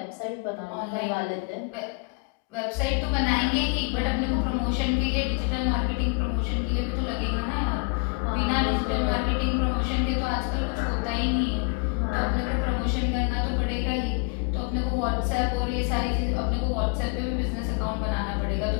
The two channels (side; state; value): right; quieter; 32.8 dB